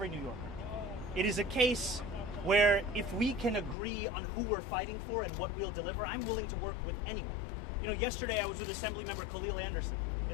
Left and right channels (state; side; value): drops out; right; at 3.8 s